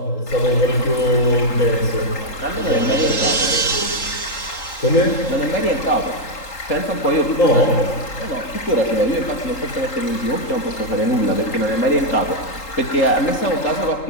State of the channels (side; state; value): right; late; 3.8 ms